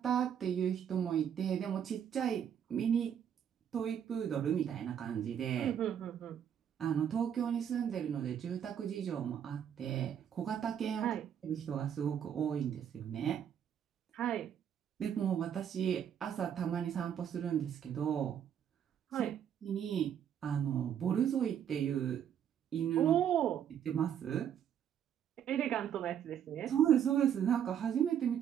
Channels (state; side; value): quieter; left; 9.0 dB